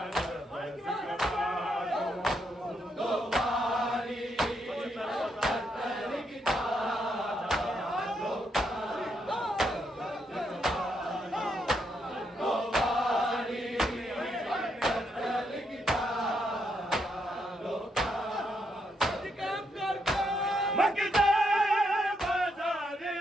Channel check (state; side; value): normal; both; correlation 0.78